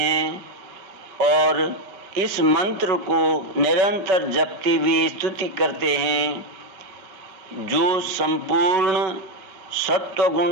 और इस मंत्र को निरंतर जपते हुए स्तुति करते हैं। जो संपूर्ण सत्व गुण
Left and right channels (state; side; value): late; left; 5.4 ms